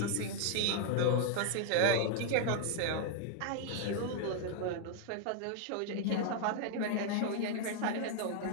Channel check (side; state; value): both; different; correlation 0.00